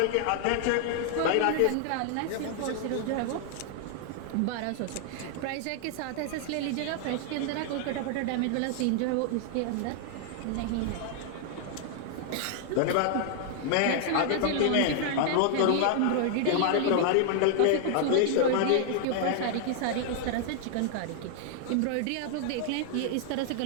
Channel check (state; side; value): different; both; correlation 0.00